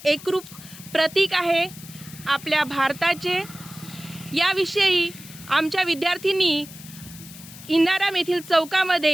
एकरूप प्रतीक आहे आपल्या भारताचे। याविषयी आमच्या विद्यार्थ्यांनी इंदाराम येथील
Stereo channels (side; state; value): left; noise; hiss, 17 dB below the sound